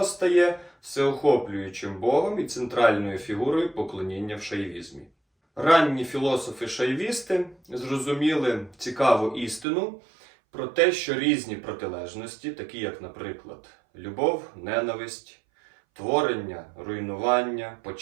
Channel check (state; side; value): drops out; left; at 9.7 s